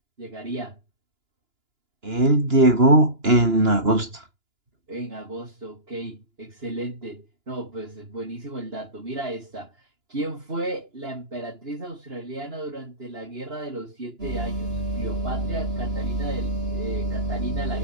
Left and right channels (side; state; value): left; late; 2.9 ms